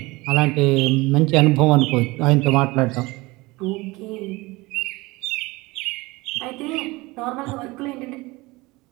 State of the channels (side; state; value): left; quieter; 22.3 dB